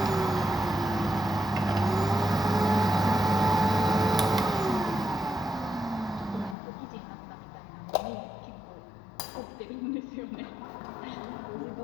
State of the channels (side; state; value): right; drops out; at 6.6 s